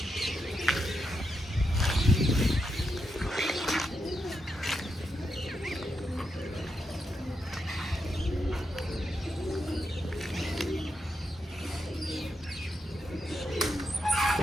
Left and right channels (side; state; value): both; normal; correlation 0.84